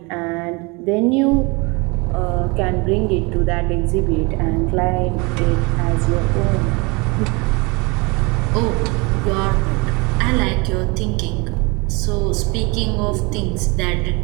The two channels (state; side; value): quieter; left; 27.5 dB